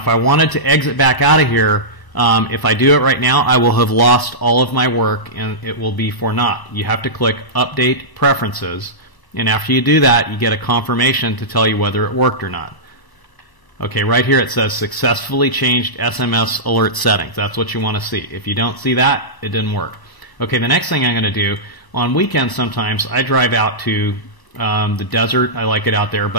I wanted to exit back out of here, if I do it right now, I will have lost all of my work, and it will be for naught. You have to click Update Preferences, and after you do that, you get a confirmation to tell you whether it worked or not. Okay, right here it says Successfully Changed SMS Alert Settings. That's what you want to see. If you don't see that, it didn't work. Okay, the next thing I'm going to do, on weekends sometimes I drive out to the desert. I like it out there,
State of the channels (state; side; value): late; right; 1.0 ms